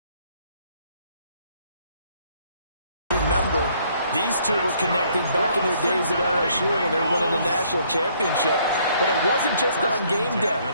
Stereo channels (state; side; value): inverted; both; correlation -0.65